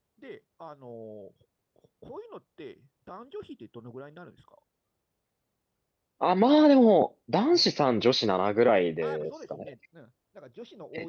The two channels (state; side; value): identical; both; correlation 1.00